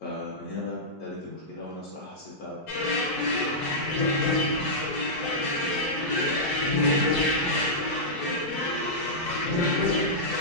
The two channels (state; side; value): normal; both; correlation -0.12